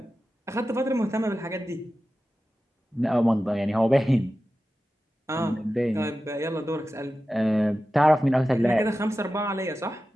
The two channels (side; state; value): both; normal; correlation 0.93